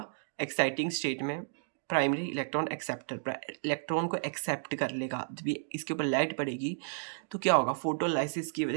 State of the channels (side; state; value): left; silent; digital silence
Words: एक्साइटिंग स्टेट में प्राइमरी इलेक्ट्रॉन एक्सेप्टर इलेक्ट्रॉन को एक्सेप्ट कर लेगा। जब ये इसके ऊपर लाइट पड़ेगी तो क्या होगा, फोटोलाइसिस की